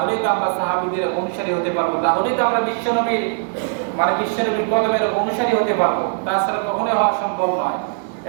তো আমরা সাহাবীদের অনুসারী হতে পারবো, তাহলেই তো আমরা বিশ্বনবীর কদমের অনুসারী হতে পারবো। তাছাড়া কখনোই হওয়া সম্ভব নয়।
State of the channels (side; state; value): left; silent; digital silence